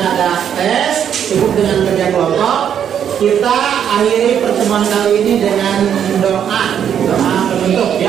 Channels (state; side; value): quieter; left; 8.8 dB